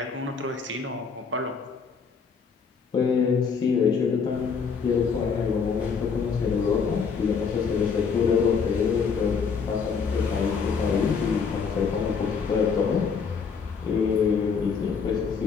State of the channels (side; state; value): right; quieter; 5.8 dB